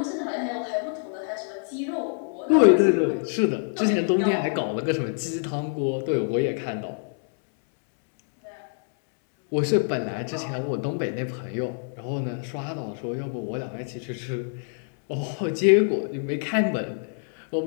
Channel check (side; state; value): right; silent; 61 dB below the other